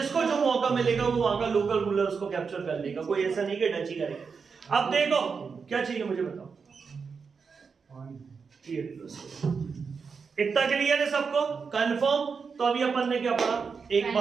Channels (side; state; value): left; quieter; 5.5 dB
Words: जो मौका मिलेगा वो वहां का लोकल रूलर उसको कैप्चर कर लेगा। कोई ऐसा नहीं कि डच ही करेगा। अब देखो क्या चाहिए मुझे बताओ। इतना क्लियर है सबको? कंफर्म? तो अभी अपन ने क्या पढ़ा एक